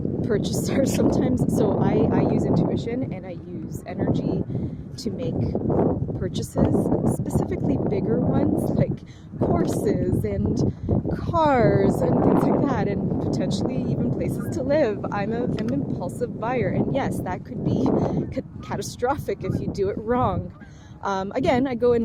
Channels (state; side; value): identical; both; correlation 1.00